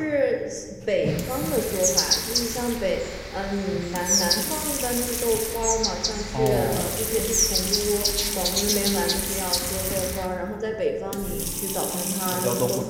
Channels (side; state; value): both; identical; correlation 1.00